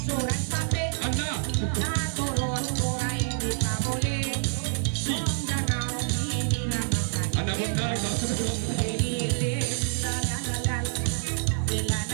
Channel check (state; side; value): silent; left; digital silence